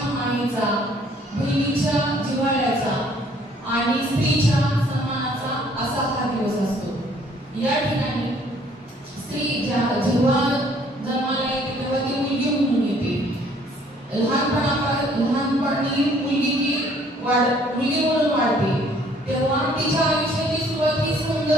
मायेचा, बहिणीच्या जिव्हाळ्याचा आणि स्त्रीच्या सन्मानाचा असा हा दिवस असतो. या ठिकाणी स्त्री जेव्हा जन्माला येते तेव्हा ती मुलगी म्हणून येते. लहानपणी मुलगी म्हणून वाढते, तेव्हा तिच्या आयुष्याची सुरुवात ही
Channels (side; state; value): both; normal; correlation 0.60